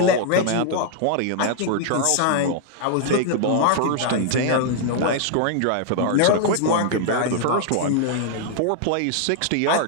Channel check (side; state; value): both; different; correlation 0.00